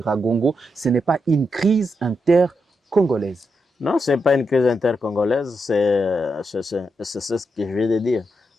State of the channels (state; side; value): normal; both; correlation 0.84